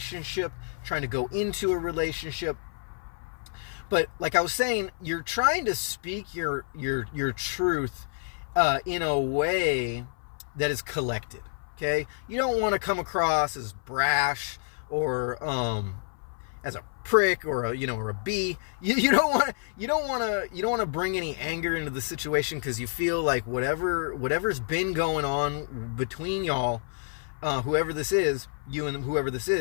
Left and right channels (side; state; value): right; silent; 57 dB below the other